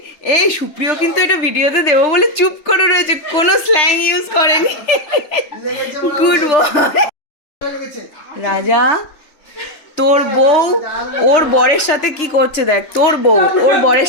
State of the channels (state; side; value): late; right; 3.4 ms